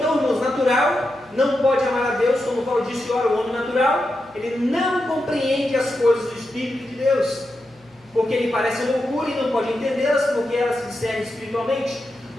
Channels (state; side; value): noise; right; hum, 30 dB below the sound